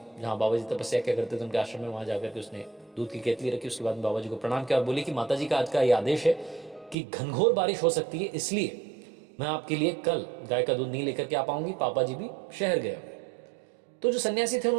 जहां बाबा जी तपस्या क्या करते थे, उनके आश्रम में। वहां जाकर के उसने दूध की केतली रखी। उसके बाद बाबा जी को प्रणाम किया और बोली कि माता जी का आज का ये आदेश है कि घनघोर बारिश हो सकती है, इसलिए मैं आपके लिए कल गाय का दूध नहीं लेकर के आ पाऊंगी। पापा जी भी शहर गए। तो जो सन्यासी थे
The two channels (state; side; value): drops out; left; at 7.0 s